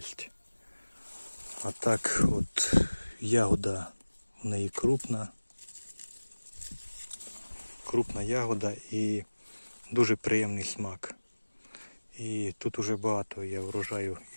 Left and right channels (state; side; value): inverted; both; correlation -1.00